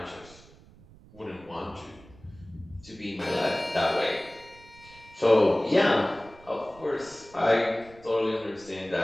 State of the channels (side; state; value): right; noise; rumble, 23 dB below the sound